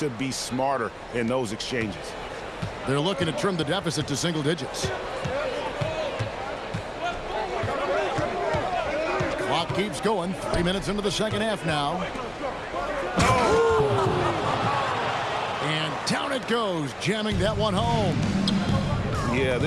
be smarter in those exchanges. They're looking to trim the deficit to single digits. Clock keeps going. 3 minutes into the second half now. And down it goes, jamming that one home. Yeah,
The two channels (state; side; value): identical; both; correlation 1.00